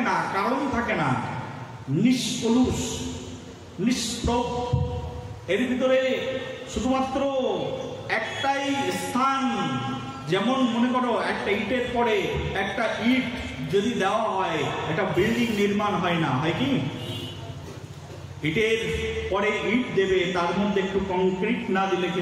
না, কারণ থাকে না, নিষ্কলুষ, নিষ্প্রভ। এর ভিতরে শুধুমাত্র একটাই স্থান। যেমন মনে করো একটা ইটের পরে একটা ইট যদি দেওয়া হয়, একটা বিল্ডিং নির্মাণ হয় না, হয় কি? ইটের পরে ইট দেবে, তার মধ্যে একটু কংক্রিট না দিলে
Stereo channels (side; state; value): both; identical; correlation 1.00